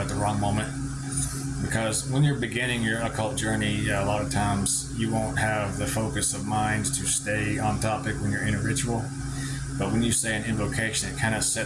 the wrong moment. Because when you're beginning your occult journey, a lot of times you won't have the focus of mind to stay on topic when you're in a ritual. But when you say an invocation, it kind of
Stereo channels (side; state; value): both; identical; correlation 1.00